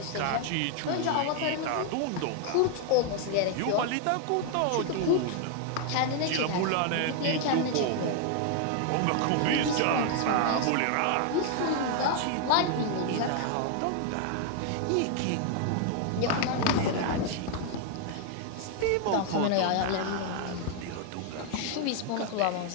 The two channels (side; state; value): both; different; correlation 0.00